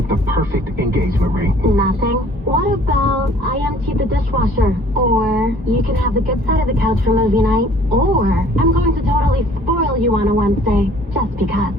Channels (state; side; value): normal; both; correlation 0.54